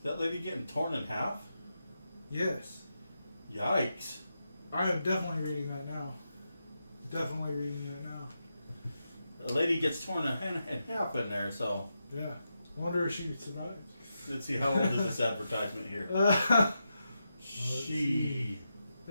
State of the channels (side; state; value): both; inverted; correlation -0.87